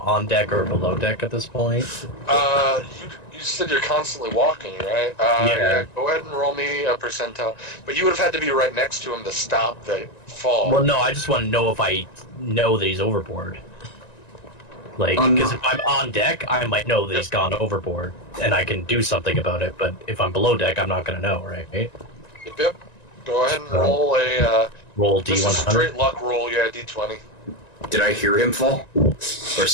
on deck or below deck at this point? You said you're constantly walking, right? Yeah. Go ahead and roll me a percentile. But you would have had to be right next to him to stop the fall. Well, no, I just want to know if I know that he's overboard. Like, Um, because if I'm on deck, I might know that he's gone overboard, and I can do something about it. But if I'm below deck, I'm not gonna know, right? Yep. Go ahead and roll a. Roll Just a D100. straight luck roll, yeah, D20. Did I hear him fall? Or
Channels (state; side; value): late; right; 1.9 ms